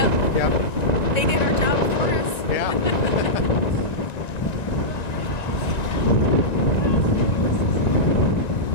Yep. They did our job for us. Yeah.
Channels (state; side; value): late; right; 1.9 ms